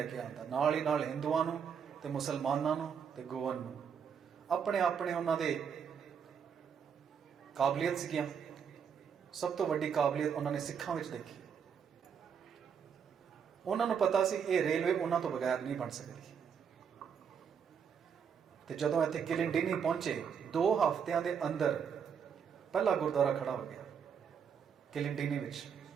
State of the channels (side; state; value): left; quieter; 7.2 dB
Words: ਕੇ ਆਉਂਦਾ, ਨਾਲ ਹੀ ਨਾਲ ਹਿੰਦੂਆਂ ਨੂੰ ਤੇ ਮੁਸਲਮਾਨਾਂ ਨੂੰ ਤੇ ਗੋਅਨ ਨੂੰ। ਆਪਣੇ ਉਹਨਾਂ ਦੇ ਕਾਬਲੀਅਤ ਸੀਗੀਆਂ। ਸਭ ਤੋਂ ਵੱਡੀ ਕਾਬਲੀਅਤ ਉਹਨਾਂ ਨੇ ਸਿੱਖਾਂ ਵਿੱਚ ਦੇਖੀ। ਉਹਨਾਂ ਨੂੰ ਪਤਾ ਸੀ ਇਹ ਰੇਲਵੇ ਉਹਨਾਂ ਤੋਂ ਬਗੈਰ ਨਹੀਂ ਬਣ ਸਕਦੀ। ਤੇ ਜਦੋਂ ਇੱਥੇ ਕਿਲਿੰਡੀਨੀ ਪਹੁੰਚੇ, 2 ਹਫ਼ਤਿਆਂ ਦੇ ਅੰਦਰ ਪਹਿਲਾ ਗੁਰਦੁਆਰਾ ਖੜਾ ਹੋ ਗਿਆ ਕਿਲਿੰਡੀਨੀ ਵਿੱਚ।